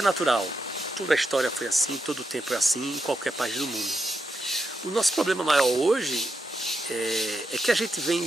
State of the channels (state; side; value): normal; both; correlation 0.84